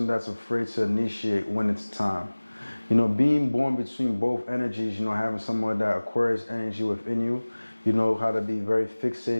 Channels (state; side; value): inverted; both; correlation -1.00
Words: that's afraid to initiate when it's time. You know, being born between both energies, you know, having someone that Aquarius energy within you, you know how to be very